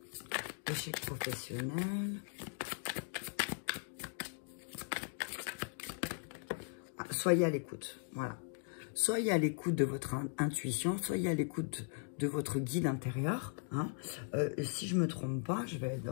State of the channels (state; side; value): silent; right; 52 dB below the other